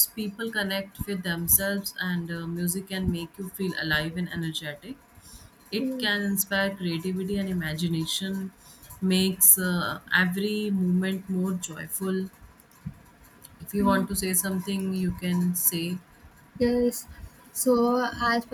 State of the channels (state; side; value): identical; both; correlation 1.00